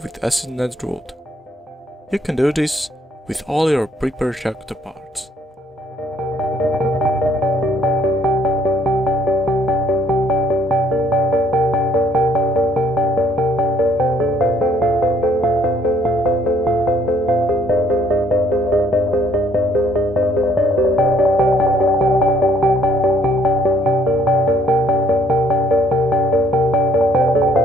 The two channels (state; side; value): normal; both; correlation 0.65